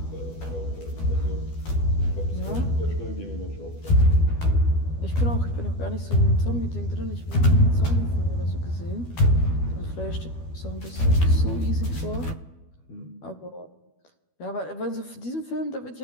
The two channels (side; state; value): right; late; 12 ms